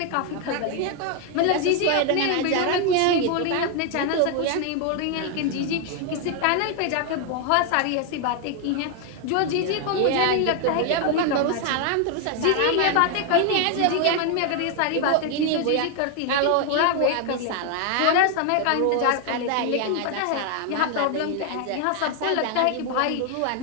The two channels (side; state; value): both; different; correlation 0.01